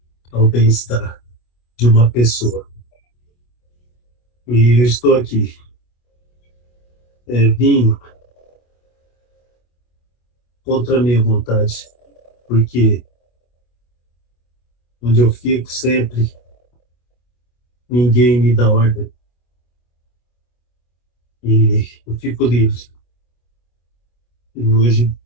ao bem-estar de uma pessoa. E eu estou aqui. Vim contra a minha vontade, porque onde eu fico sempre, ninguém me dá ordem. E eu fico livre. E hoje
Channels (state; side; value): late; right; 25 ms